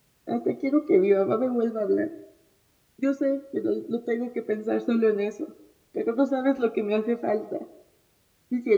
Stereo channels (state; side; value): identical; both; correlation 1.00